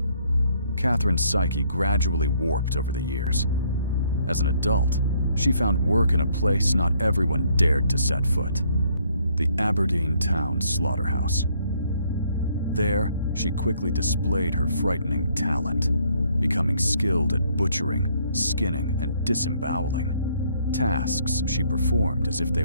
Katherine's psyche gradually warped over the years. As an adult, she found work in a place not everyone dared to set foot, the Aberdeen town slaughterhouse. There, she quickly displayed her frightening talent, becoming skilled at butchering, skinning, and disemboweling, tasks she performed as if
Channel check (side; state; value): both; inverted; correlation -0.66